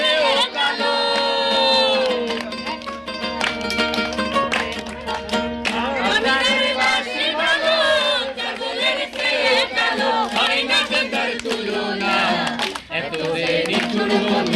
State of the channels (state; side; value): identical; both; correlation 1.00